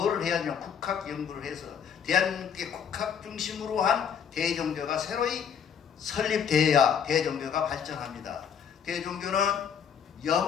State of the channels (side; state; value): right; quieter; 7.6 dB